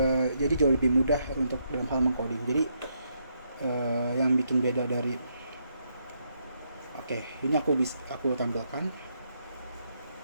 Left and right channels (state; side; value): inverted; both; correlation -0.78